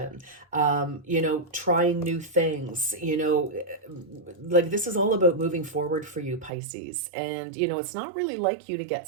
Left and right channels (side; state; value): left; drops out; at 6.5 s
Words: trying new things, like this is all about moving forward for you, Pisces. And, it's not really like you to